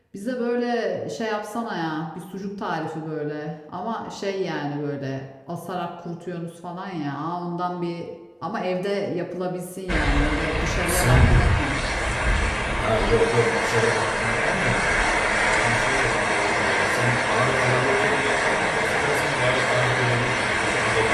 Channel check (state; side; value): identical; both; correlation 1.00